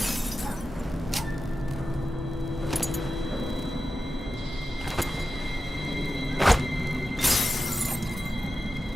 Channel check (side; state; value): both; normal; correlation 0.93